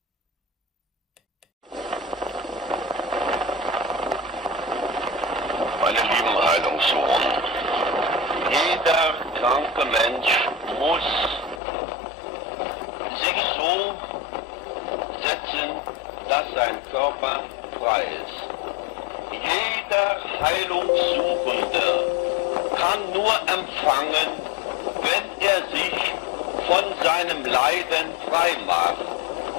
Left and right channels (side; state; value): right; drops out; at 11.6 s